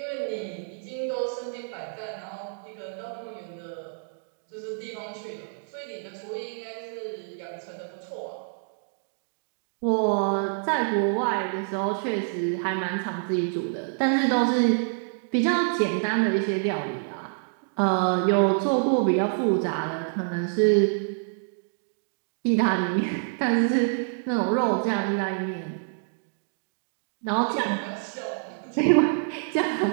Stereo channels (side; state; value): left; silent; digital silence